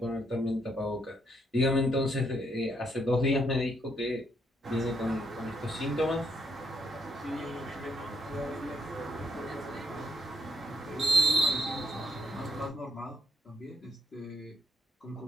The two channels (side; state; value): both; normal; correlation 0.75